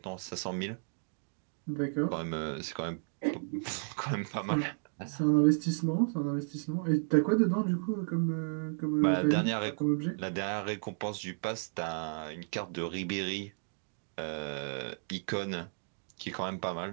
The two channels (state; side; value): silent; left; digital silence